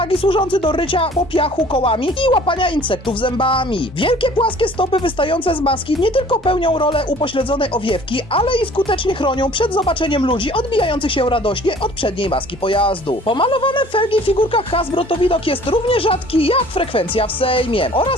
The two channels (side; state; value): both; normal; correlation 0.51